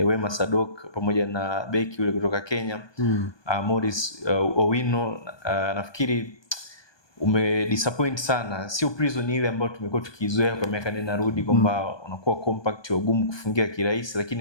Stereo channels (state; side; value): late; right; 1.2 ms